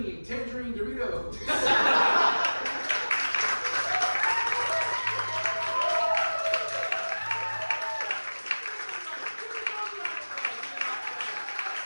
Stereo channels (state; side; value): inverted; both; correlation -1.00